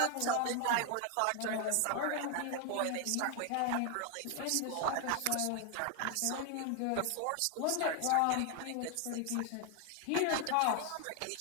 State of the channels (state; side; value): different; both; correlation 0.00